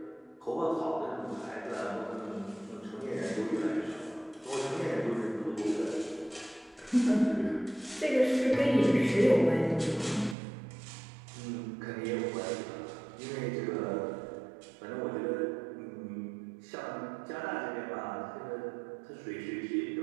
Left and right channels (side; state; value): left; drops out; at 10.4 s